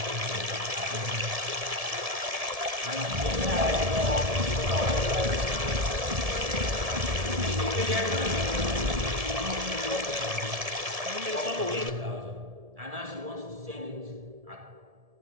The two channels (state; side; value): late; left; 1.7 ms